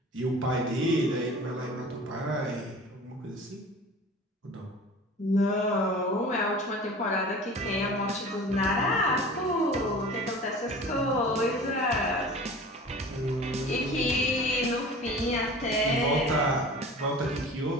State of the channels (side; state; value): both; normal; correlation 0.40